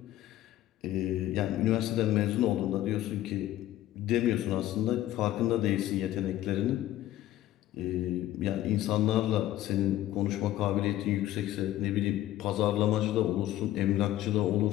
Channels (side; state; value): right; quieter; 14.0 dB